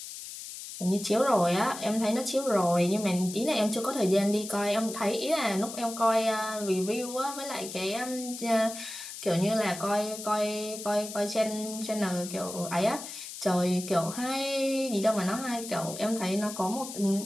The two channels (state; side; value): noise; left; hiss, 10 dB below the sound